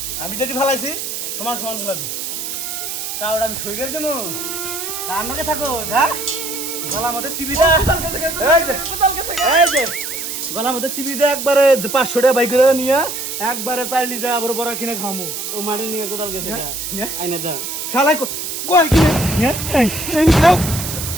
আমি যেটি ফালাইছি সমান সমান ফেলাবি তা ওটা আমি সই করে দেবো তা আমাকে থাকো হ্যাঁ গলার মধ্যে চিবি দে এই যে এই যে গলার মধ্যে চিবি দে একবারে 500 টাকা বাইক করে নিয়ে একবারে চাইলি যা আবার বড় কিনে খামু ও মারি নিয়ে কোদাল গেছে নিয়ে আইনে দাও শালাই কই কিনে নিয়ে এই দাও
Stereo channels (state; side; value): noise; right; hiss, 5 dB below the sound